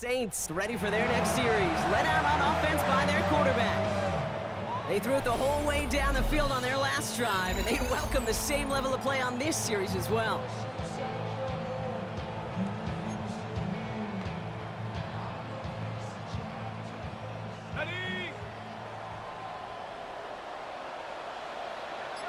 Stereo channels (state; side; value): identical; both; correlation 1.00